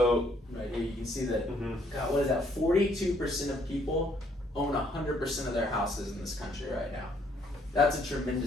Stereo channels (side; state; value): both; normal; correlation 0.67